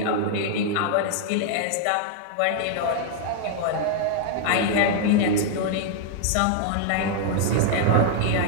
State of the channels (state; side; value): different; both; correlation 0.00